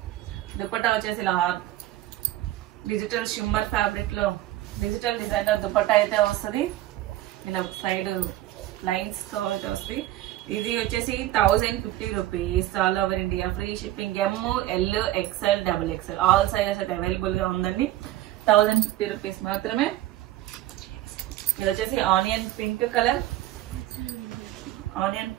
దుపట్టా వచ్చేసి ఇలా డిజిటల్ షిమ్మర్ ఫ్యాబ్రిక్ లో డిజిటల్ డిజైనర్ దుపట్టా అయితే వస్తుంది. ఇలా సైడ్ లైన్స్ తో అయితే వస్తుంది. ఇది వచ్చేసి 1050 rupees. All over India free shipping. ML XL XXL all sizes అయితే అవైలబుల్ గా ఉందండి. 1050 రూపీస్ మాత్రమే. ఇది వచ్చేసి onion pink colour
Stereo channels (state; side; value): quieter; left; 14.8 dB